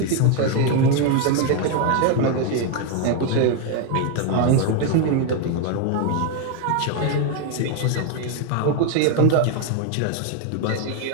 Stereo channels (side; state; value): both; different; correlation 0.01